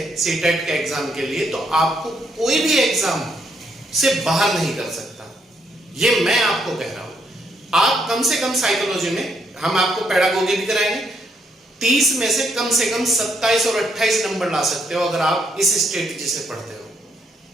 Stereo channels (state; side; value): normal; both; correlation 0.74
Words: सीटेट के एग्जाम के लिए तो आपको कोई भी एग्जाम से बाहर नहीं कर सकता। ये मैं आपको कह रहा हूं। आप कम से कम साइकोलॉजी में हम आपको पेडागोगी भी कराएंगे, 30 में से कम 27 और 28 नंबर ला सकते हो अगर आप इस स्ट्रेटेजी से पढ़ते हो।